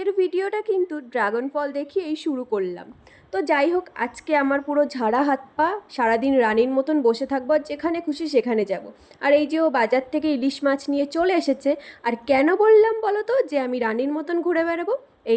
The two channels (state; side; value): identical; both; correlation 1.00